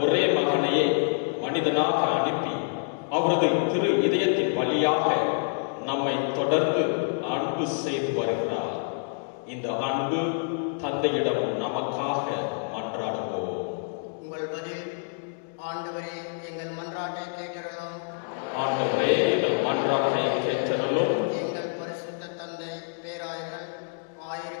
ஒரே மகனையே மனிதனாக அனுப்பி அவரது திரு இதயத்தின் வழியாக நம்மை தொடர்ந்து அன்பு செய்து வருகிறார். இந்த அன்பு தந்தையிடம் நமக்காக மன்றாடுவோம். உங்கள் பதில், ஆண்டவரே எங்கள் மன்றாட்டை கேட்டருளும். ஆண்டவரே எங்கள் மன்றாட்டை கேட்டருளும். எங்கள் பரிசுத்த தந்தை, பேராயர்கள்,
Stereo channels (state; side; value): silent; right; digital silence